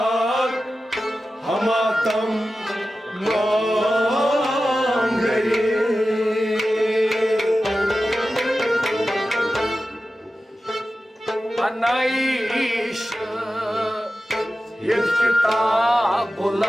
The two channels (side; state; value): both; normal; correlation 0.93